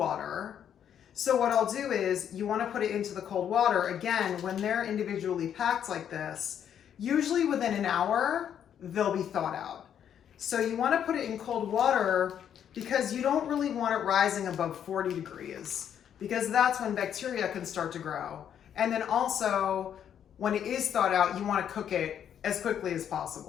So what I'll do is you want to put it into the cold water. Again, when they're individually packed like this, usually within an hour, they'll be thawed out. So you want to put it in cold water because you don't really want it rising above 40 degrees because that's when bacteria can start to grow. And then also, when it is thawed out, you want to cook it as quickly as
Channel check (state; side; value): quieter; right; 9.2 dB